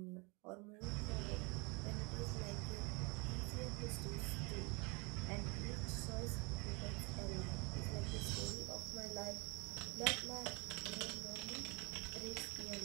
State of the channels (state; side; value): quieter; left; 29.0 dB